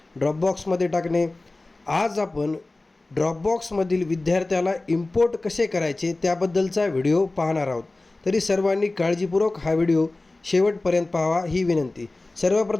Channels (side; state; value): right; quieter; 3.0 dB